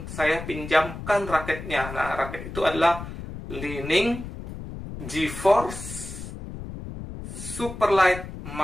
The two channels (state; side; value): noise; left; rumble, 10 dB below the sound